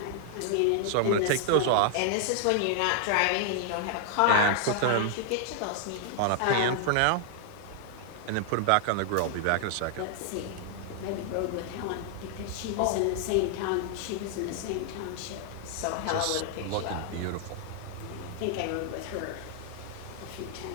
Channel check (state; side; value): different; both; correlation -0.01